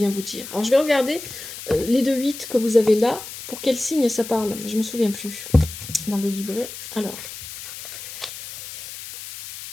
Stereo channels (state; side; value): noise; left; hiss, 11 dB below the sound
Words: vous dire. Alors je vais regarder les 2-8 que vous avez là. Pour quel signe ça parle? Je ne me souviens plus dans le livret. Alors,